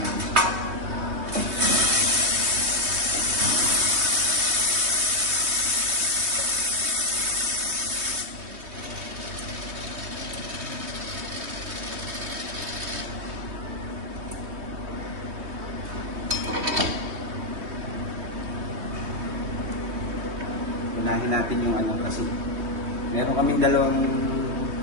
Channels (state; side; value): late; left; 3.2 ms